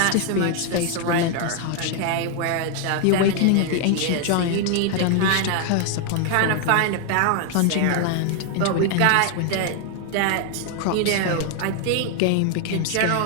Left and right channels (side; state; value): both; different; correlation 0.00